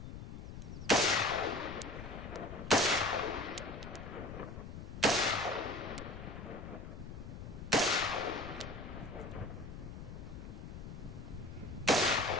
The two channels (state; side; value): noise; left; rumble, 9 dB below the sound